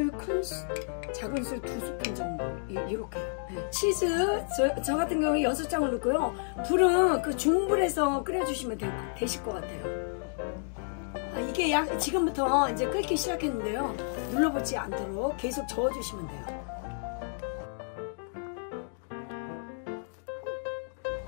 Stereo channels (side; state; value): right; silent; digital silence